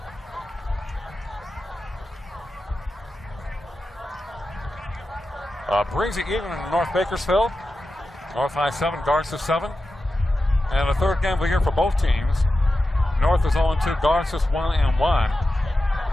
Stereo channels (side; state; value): both; normal; correlation 0.92